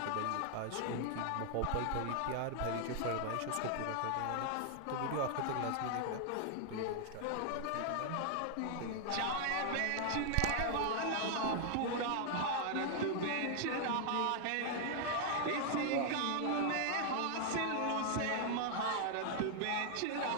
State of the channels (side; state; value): both; different; correlation 0.00